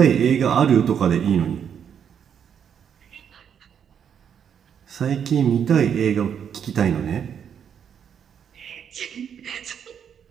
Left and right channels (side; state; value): left; quieter; 8.1 dB